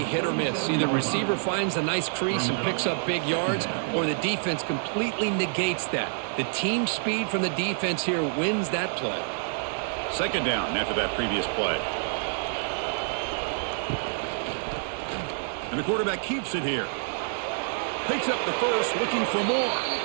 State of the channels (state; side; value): silent; left; digital silence